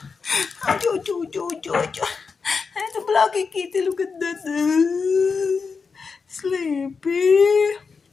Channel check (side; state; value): right; quieter; 5.1 dB